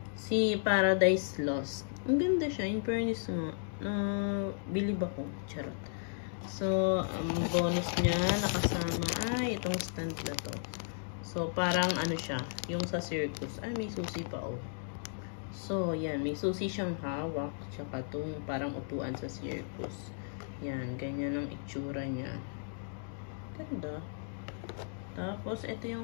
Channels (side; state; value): right; silent; digital silence